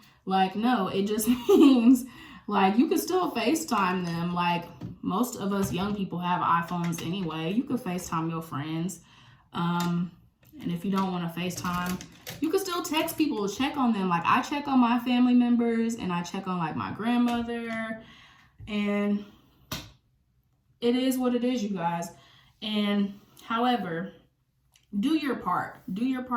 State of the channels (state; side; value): identical; both; correlation 1.00